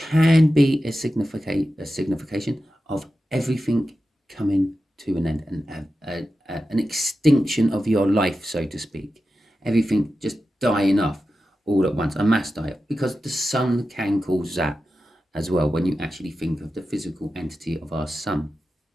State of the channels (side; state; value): both; normal; correlation 0.92